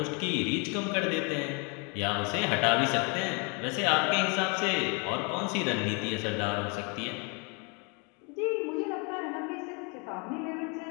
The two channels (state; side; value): quieter; right; 33.1 dB